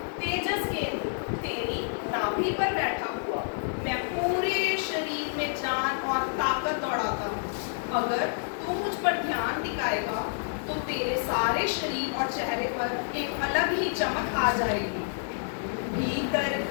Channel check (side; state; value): right; silent; digital silence